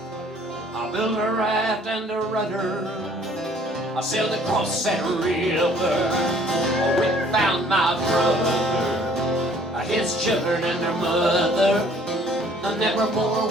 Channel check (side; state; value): both; normal; correlation 0.57